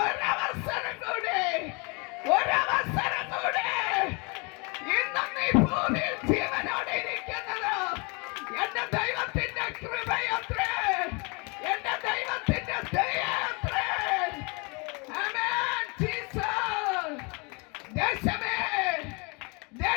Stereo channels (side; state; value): right; quieter; 30.9 dB